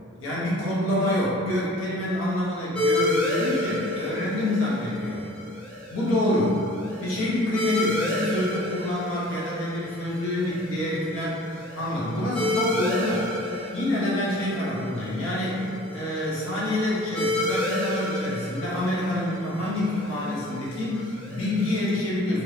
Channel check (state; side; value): normal; both; correlation 0.48